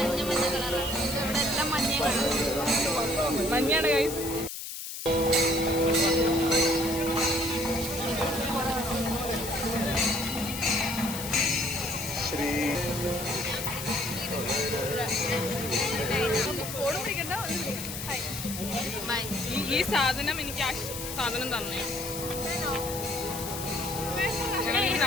മഞ്ഞാണ് ഗൈസ്. ഈ സാധനം എനിക്ക് ആ സാധനം തന്നെ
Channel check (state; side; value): noise; left; hiss, 7 dB below the sound